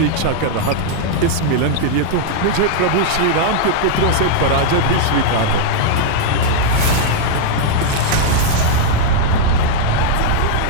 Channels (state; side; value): different; both; correlation -0.01